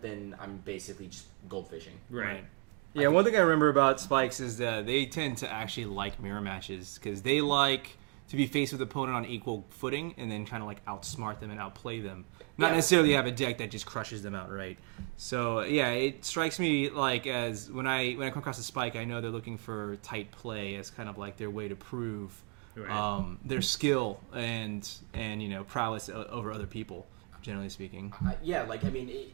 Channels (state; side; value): quieter; left; 32.8 dB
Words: then I'm basically just goldfishing. Right. Yeah, one thing I remember about Spikes is that they tend to actually like mirror matches because they like to be faced with the opponent on equal footing and then kind of like outsmart them and outplay them. Not necessarily have a deck that just crushes them outright. So yeah, it strikes me like as when I come across a Spike, I know they're looking for tight play as kind of like their way to prove their skill and prowess over other people. Generally speaking,